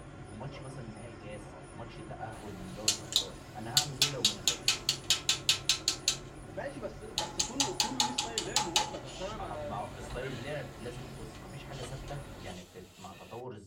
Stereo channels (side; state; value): both; identical; correlation 1.00